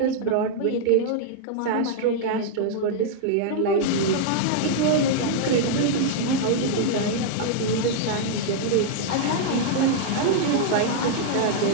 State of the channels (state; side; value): different; both; correlation -0.01